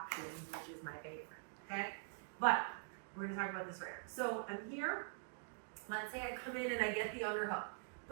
which is my favorite, okay? But we're gonna talk about this right now. So I'm here, let's say I come in and I get the underhook,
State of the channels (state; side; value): silent; left; digital silence